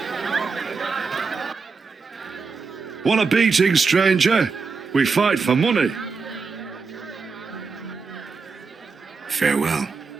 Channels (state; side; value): quieter; left; 4.8 dB